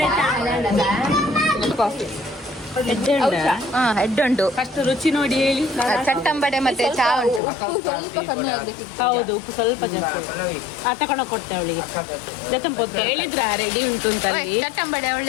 ಹೆಡ್ ಉಂಟು, ಫಸ್ಟ್ ರುಚಿ ನೋಡಿ ಹೇಳಿ. ಚಟ್ಟಂಬಡೆ ಮತ್ತೆ ಚಾ ಉಂಟು. ಸ್ವಲ್ಪ ಕಮ್ಮಿ ಆಗ್ಬೇಕಿತ್ತು. ಹೌದು, ಉಪ್ಪು ಸ್ವಲ್ಪ ಜಾಸ್ತಿ. ತಗೊಂಡೋಗಿ ಕೊಡ್ತೆ ಅವಳಿಗೆ. ಹೇಳಿದ್ರ ರೆಡಿ ಉಂಟು ಅಂತ. ಚಟ್ಟಂಬಡೆ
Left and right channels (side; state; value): right; drops out; at 7.4 s